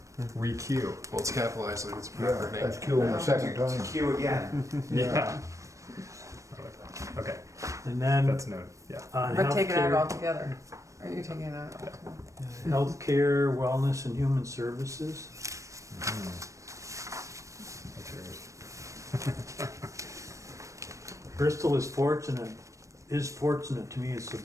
Re-Q. Well, it's capitalized like it's a Yeah, proper name. that's killing the second time. Q again. Yeah. Okay, And then that's noted. Yeah. on But take it out healthcare, altogether. Are you taking it out altogether? healthcare, wellness and human services. That's yours. Bristol is fortunate to me, is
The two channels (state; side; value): late; left; 0.15 ms